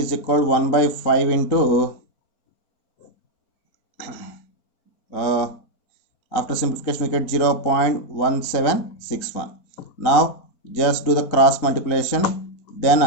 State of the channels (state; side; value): late; right; 4.3 ms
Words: equal to 1 by 5 into after simplification we get 0.1761. Now just do the cross multiplication, then